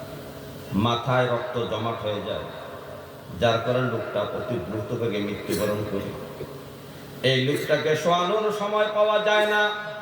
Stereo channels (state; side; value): identical; both; correlation 1.00